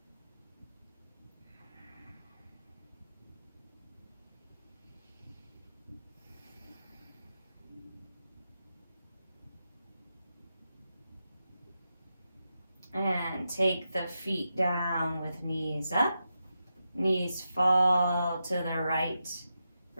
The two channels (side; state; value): both; inverted; correlation -0.87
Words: And take the feet down with knees up. Knees fall to the right.